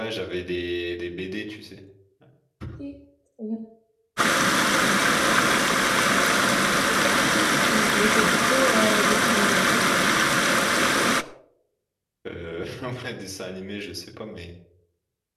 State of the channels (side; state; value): both; identical; correlation 1.00